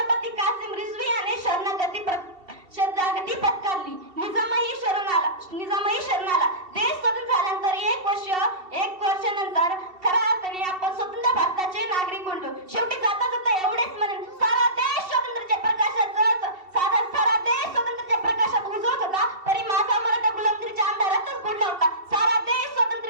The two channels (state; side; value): late; left; 2.7 ms